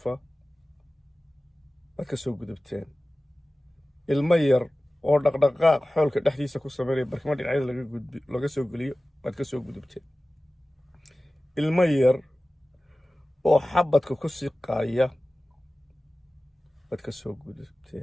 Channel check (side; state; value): both; normal; correlation 0.96